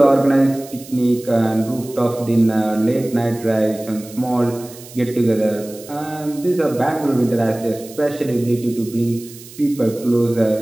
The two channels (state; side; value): noise; right; hiss, 18 dB below the sound